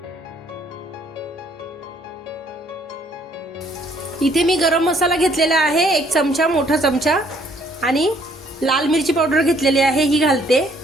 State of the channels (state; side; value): normal; both; correlation 0.64